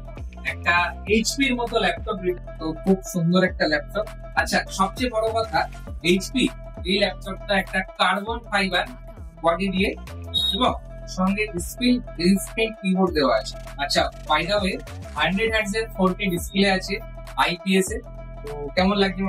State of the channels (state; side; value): identical; both; correlation 1.00